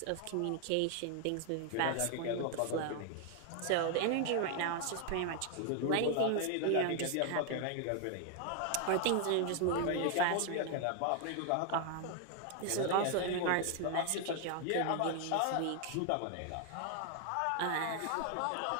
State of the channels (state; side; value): different; both; correlation 0.00